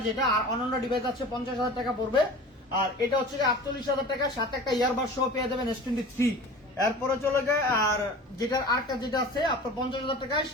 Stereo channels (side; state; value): both; normal; correlation 0.39